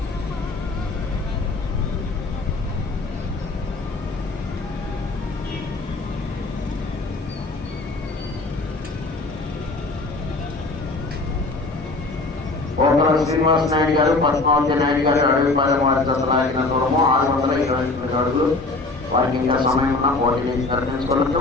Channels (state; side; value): quieter; right; 3.3 dB